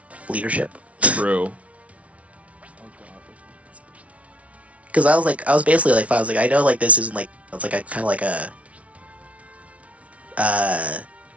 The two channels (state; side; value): late; left; 0.065 ms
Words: leadership true. because I was basically like I was like I know like this isn't like it's like a kind of like a uh